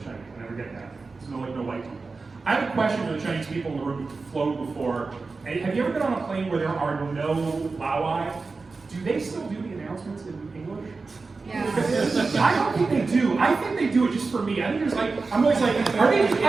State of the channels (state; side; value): quieter; left; 4.1 dB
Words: Chinese. I never get that. There's no white people. I have a question for the Chinese people in the room who've flown before. Have you ever been on a plane where there are no Laowai? Do they still do the announcements in English? Yeah. I don't think they do. I think they do it just for me. I think there's like, I'm always like, are